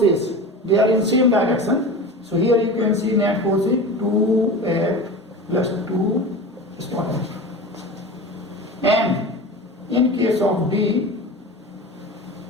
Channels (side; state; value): both; normal; correlation 0.31